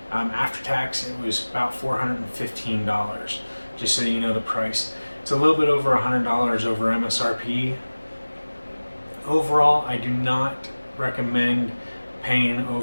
After tax, it was about $415, just so you know the price. It's a little bit over $100 over MSRP. Overall, I do not recommend paying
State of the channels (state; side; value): inverted; both; correlation -1.00